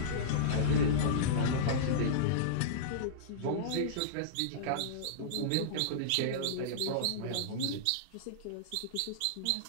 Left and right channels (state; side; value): different; both; correlation -0.03